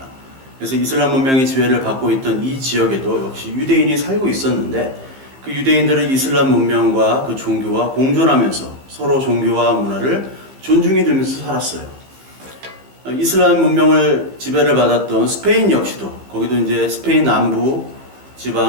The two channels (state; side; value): late; left; 15 ms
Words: 그래서 이슬람 문명이 지배를 받고 있던 이 지역에도 역시 유대인이 살고 있었는데, 그 유대인들은 이슬람 문명과 그 종교와 공존하면서 서로 종교와 문화를 존중해 주면서 살았어요. 이슬람 문명을 지배를 받았던 스페인 역시도, 거기도 이제 스페인 남부